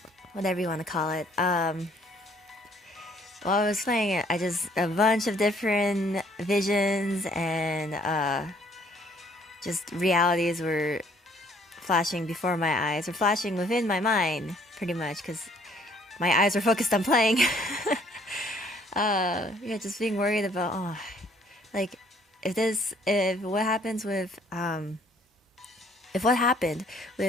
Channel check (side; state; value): both; normal; correlation 0.62